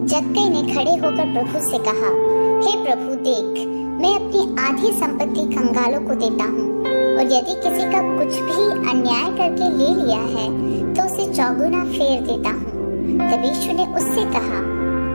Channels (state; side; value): inverted; both; correlation -1.00